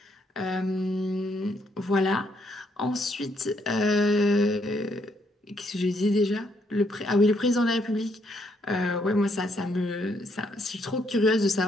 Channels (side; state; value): both; normal; correlation 0.72